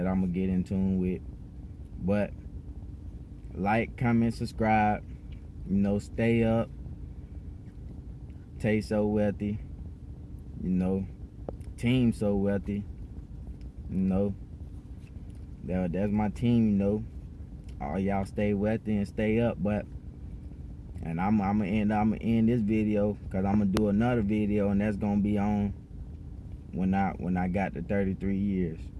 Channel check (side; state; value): both; identical; correlation 1.00